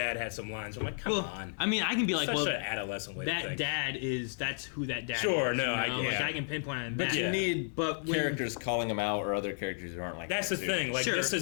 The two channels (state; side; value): silent; right; digital silence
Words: had some lines. I'm like, come Well, on. I mean, I can be like, Such well, an adolescent way to that think. dad that's who that dad Sure, is. no, you know? I get like it. I can pinpoint on But that. you Yeah. need But when- characters calling them out or other characters who aren't like That's that, the too. thing. Like sure. this